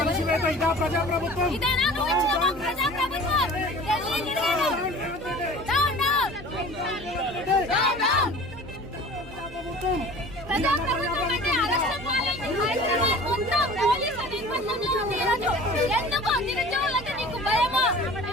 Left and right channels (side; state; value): both; normal; correlation 0.42